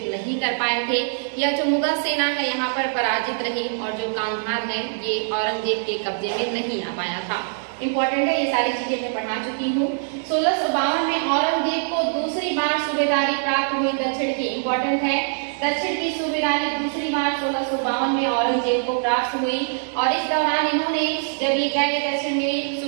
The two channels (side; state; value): left; silent; 62 dB below the other